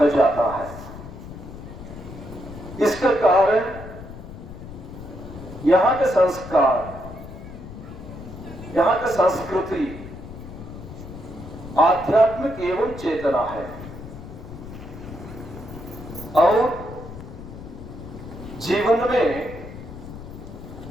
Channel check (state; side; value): noise; left; rumble, 13 dB below the sound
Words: जाता है। इसका कारण यहाँ के संस्कार, यहाँ की संस्कृति आध्यात्मिक एवं चेतना है और जीवन में